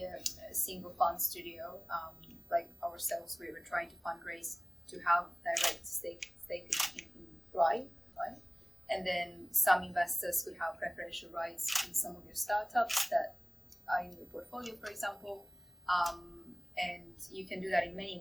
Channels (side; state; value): both; identical; correlation 1.00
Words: a single fund studio, like ourselves. We were trying to fundraise to have direct stake in Thrive, right? And then some investors could have preferential rights in some of your startups that are in your portfolio, for example. And you can do that in many